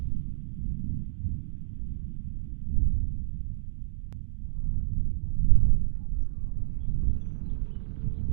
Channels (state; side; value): silent; left; digital silence